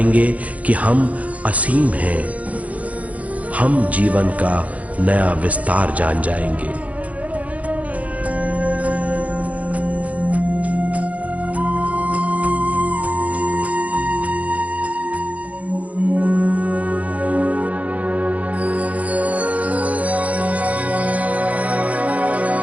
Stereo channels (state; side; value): late; left; 0.068 ms